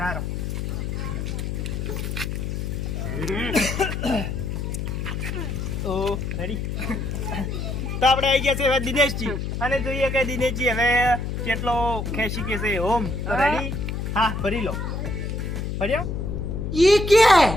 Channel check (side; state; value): left; noise; hum, 3 dB below the sound